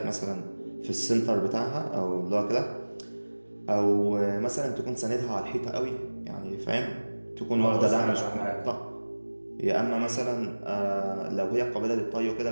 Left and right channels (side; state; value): both; inverted; correlation -1.00